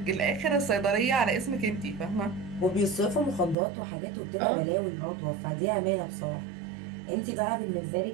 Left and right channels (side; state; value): left; drops out; at 3.6 s